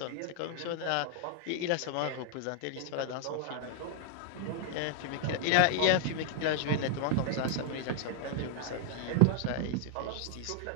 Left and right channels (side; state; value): both; different; correlation 0.00